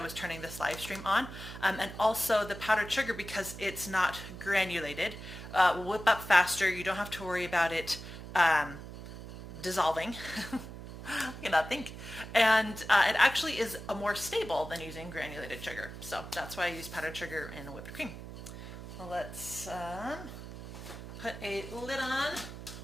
turning this live stream on. And also the powdered sugar, because it's not granulated, will whip up faster. You don't have to worry about it dissolving. I cannot think. And it actually is more stable than using granulated sugar. So that's why I use powdered sugar in whipped cream. Well, let's put a lid on.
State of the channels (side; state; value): right; noise; hum, 11 dB below the sound